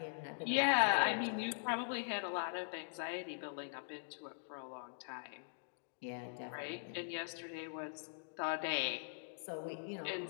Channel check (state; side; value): silent; right; digital silence